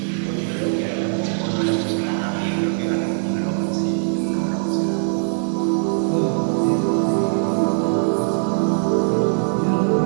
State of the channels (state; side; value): silent; left; digital silence